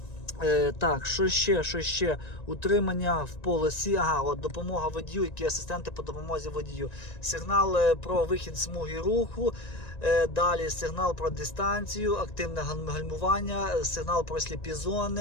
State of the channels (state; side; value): late; right; 1.9 ms